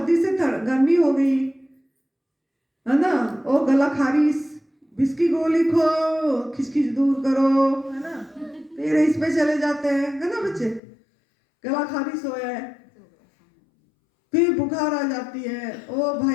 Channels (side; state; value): right; drops out; at 10.8 s